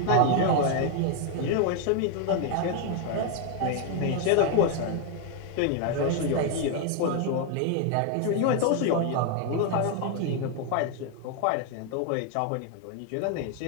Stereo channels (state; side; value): different; both; correlation 0.01